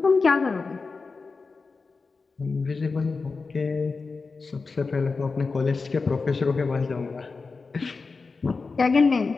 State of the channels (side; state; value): right; quieter; 4.3 dB